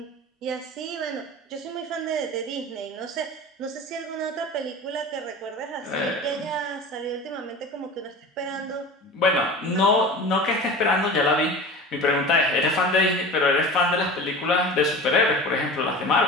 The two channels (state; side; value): normal; both; correlation 0.34